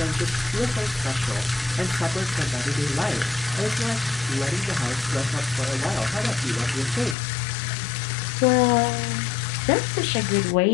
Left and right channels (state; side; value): drops out; right; at 7.2 s